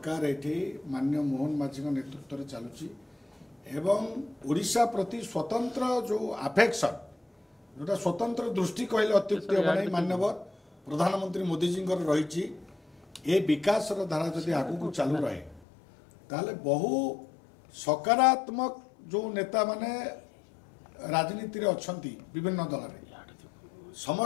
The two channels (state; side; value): drops out; right; at 15.7 s